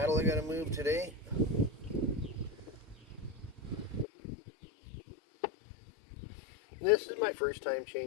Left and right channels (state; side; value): drops out; right; at 4.0 s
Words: I got to move today. This is my first time